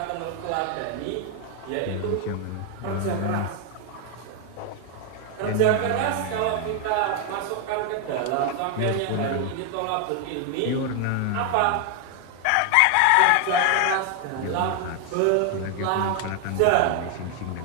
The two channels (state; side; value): different; both; correlation 0.00